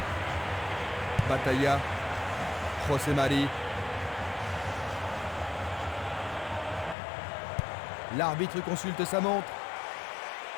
Batalla, José Mari. L'arbitre consulte sa montre.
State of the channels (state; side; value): drops out; right; at 7.0 s